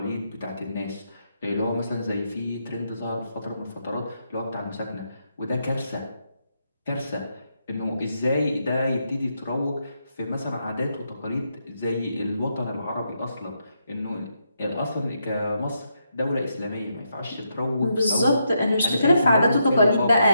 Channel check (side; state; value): both; inverted; correlation -0.80